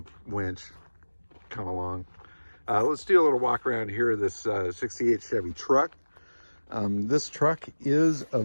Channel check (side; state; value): both; inverted; correlation -1.00